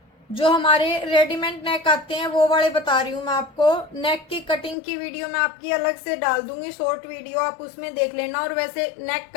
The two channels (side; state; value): right; drops out; at 4.8 s